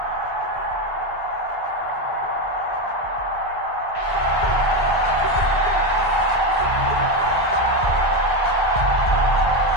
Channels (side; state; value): right; late; 1.9 ms